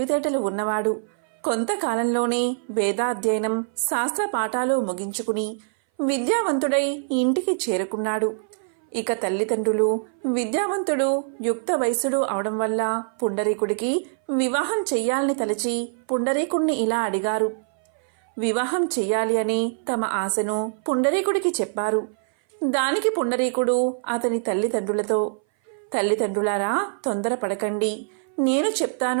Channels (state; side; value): silent; left; 59 dB below the other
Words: ఉన్నవాడు. కొంతకాలంలోనే వేదాధ్యయనం, శాస్త్ర పాఠాలు ముగించుకుని విద్యావంతుడై ఇంటికి చేరుకున్నాడు. ఇక తల్లిదండ్రులు విద్యావంతుడు, యుక్త వయసుడు అవడం వల్ల పుండరీకుడికి వివాహం చెయ్యాలని తలచి పుండరీకుణ్ణి ఇలా అడిగారు. వివాహం చెయ్యాలి అని తమ ఆశను పుండరీకుడికి చెప్పారు. దానికి పుండరీకుడు అతని తల్లిదండ్రులతో, తల్లిదండ్రులారా, తొందరపడకండి, నేను